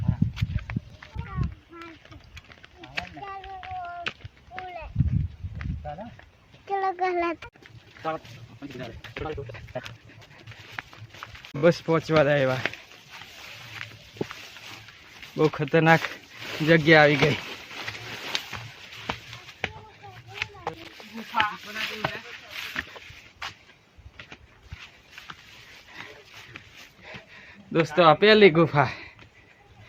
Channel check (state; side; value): identical; both; correlation 1.00